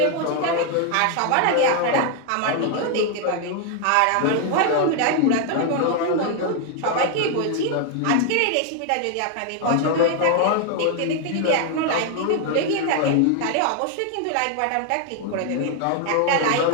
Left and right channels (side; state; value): both; different; correlation 0.00